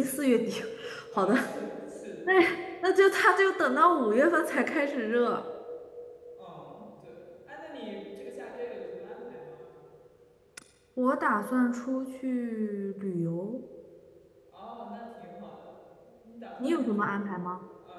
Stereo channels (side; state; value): both; identical; correlation 1.00